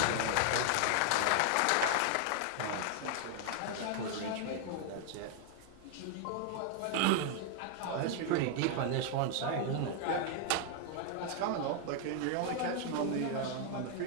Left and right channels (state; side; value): different; both; correlation 0.00